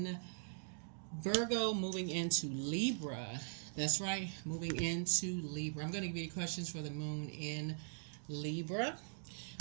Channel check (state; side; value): silent; left; digital silence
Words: Virgo, moving into Libra. That's right, moving into Libra. I'm going to give you questions for the moon in Libra.